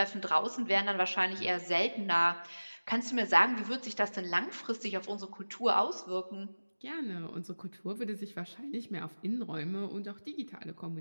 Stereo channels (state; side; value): inverted; both; correlation -1.00